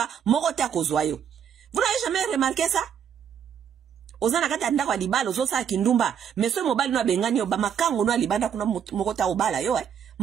moko te akozwa yo. Vous n'avez jamais remarqué ça? Ozana kata anda kwa libala ozo sala kindumba mais so mobali no bengani yo ba makango no libanda kuna moko ta obala yo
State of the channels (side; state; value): left; quieter; 8.3 dB